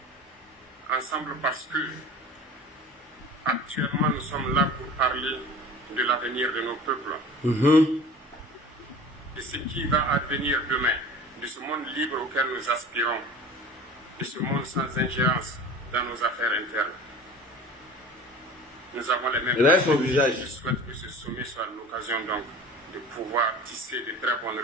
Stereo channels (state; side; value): normal; both; correlation 0.40